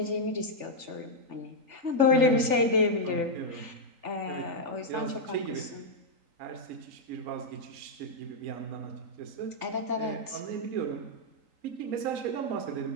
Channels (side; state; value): left; late; 3.4 ms